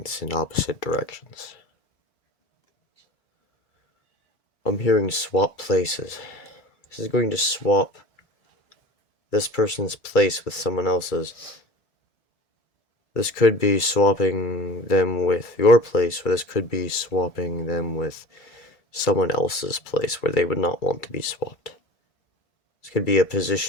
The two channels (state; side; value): late; right; 2.3 ms